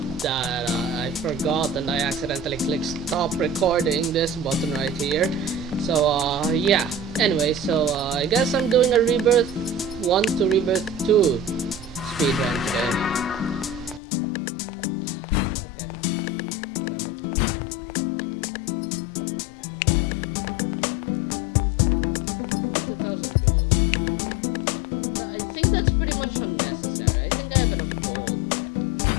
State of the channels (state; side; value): drops out; right; at 14.0 s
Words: and I accidentally clicked stop recording, this button right here. So yeah. Anyway, so I guess I'm doing a Rebirth 1 to Rebirth 2 speedrun today. Okay, whatever. 2,000 gold. I think that's pretty much unnecessary. I think I have enough gold.